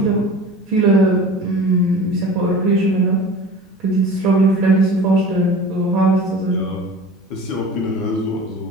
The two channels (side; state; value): both; normal; correlation 0.39